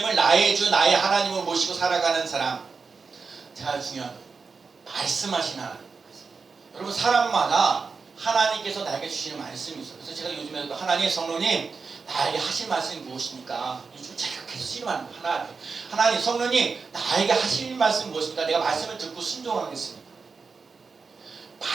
나의 주 나의 하나님을 모시고 살아가는 사람. 자, 중요한 말씀하신 하나님. 여러분 사람마다 하나님께서 나에게 주시는 말씀이 있어요. 그래서 제가 요즘에도 하나님 성령님 나에게 하실 말씀이 무엇입니까? 요즘 제가 계속 씨름하는 거예요. 하나님 성령님 나에게 하실 말씀이 무엇입니까? 내가 말씀을 듣고 순종하겠습니다.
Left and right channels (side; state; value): left; quieter; 4.9 dB